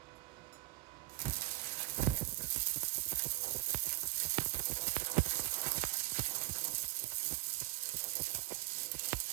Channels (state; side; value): quieter; left; 19.8 dB